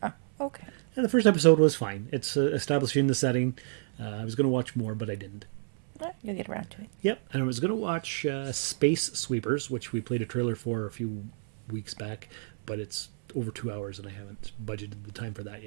Oh, okay. And the first episode was fine. It's establishing the setting. I was going to watch more, but I didn't. You'll get around to it. Yep, and I was going to watch Space Sweepers, which we played a trailer for a few weeks back, but it's over 2 hours, and I haven't budgeted the time for that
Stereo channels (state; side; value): silent; left; 58 dB below the other